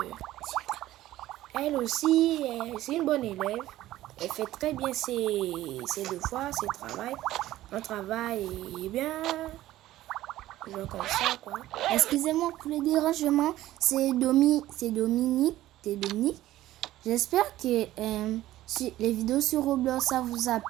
elle aussi, c'est une bonne élève. Elle fait très bien ses devoirs, ses travail. Son travail est bien, genre comme ça, quoi. Excusez-moi pour le dérangement, c'est Dominique. J'espère que si les vidéos sur Roblox, ça vous a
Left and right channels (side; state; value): left; quieter; 14.9 dB